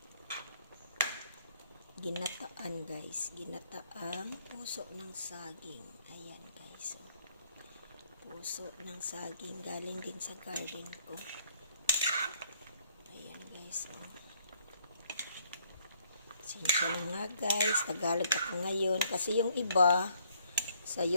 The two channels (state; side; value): inverted; both; correlation -0.65